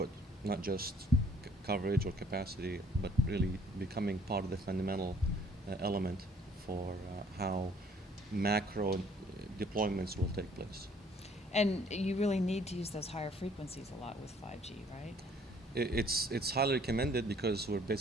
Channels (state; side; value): normal; both; correlation 0.59